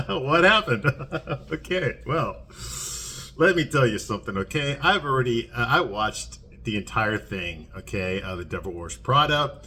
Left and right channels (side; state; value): both; identical; correlation 1.00